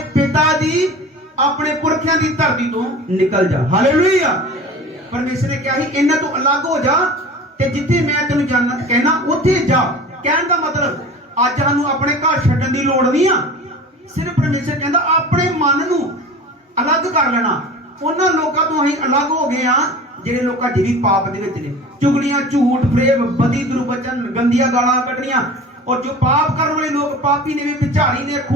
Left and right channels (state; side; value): normal; both; correlation 0.38